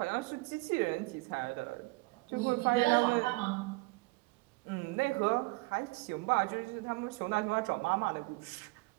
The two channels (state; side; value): quieter; left; 24.9 dB